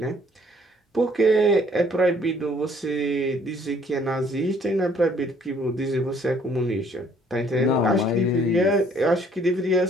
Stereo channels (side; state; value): both; normal; correlation 0.61